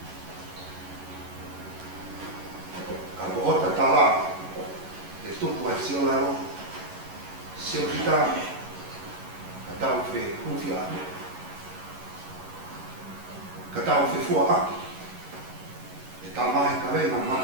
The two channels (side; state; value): left; late; 11 ms